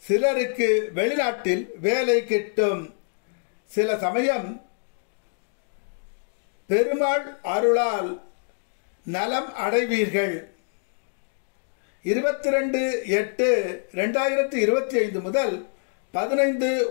சிலருக்கு வெளிநாட்டில் வேலை கிட்டும். சில சமயம் பெருமாள் அருளால் நலம் அடைவீர்கள். 22/8/2025 முதல்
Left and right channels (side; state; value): right; silent; digital silence